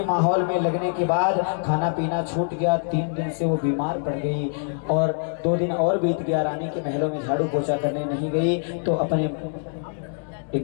माहौल में लगने के बाद खाना पीना छूट गया। 3 दिन से वो बीमार पड़ गई और 2 दिन और बीत गया। रानी के महलों में झाड़ू पोछा करने नहीं गई तो अपने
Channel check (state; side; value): silent; right; digital silence